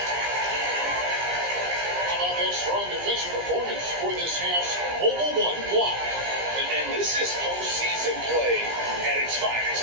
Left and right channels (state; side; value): late; left; 17 ms